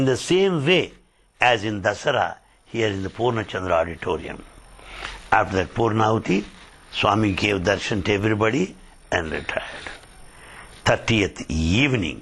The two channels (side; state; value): both; identical; correlation 1.00